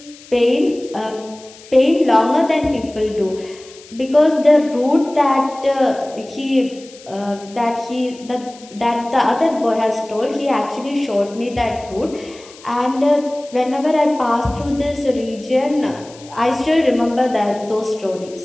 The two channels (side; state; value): left; noise; hiss, 21 dB below the sound